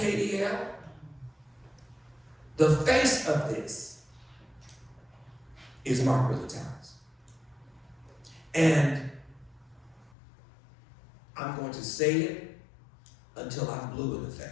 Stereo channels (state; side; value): drops out; right; at 10.1 s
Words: the face of this is Margaret Towers. And I'm going to say it until I'm blue in the